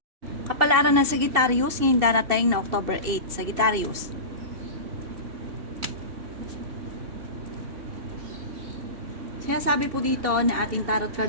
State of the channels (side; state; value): left; late; 2.7 ms